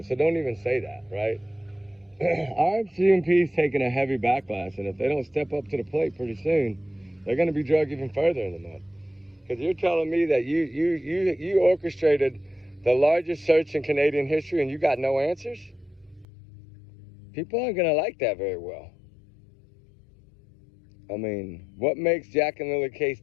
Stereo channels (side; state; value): right; drops out; at 16.2 s